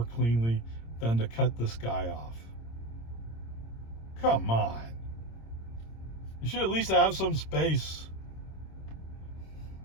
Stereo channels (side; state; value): right; late; 26 ms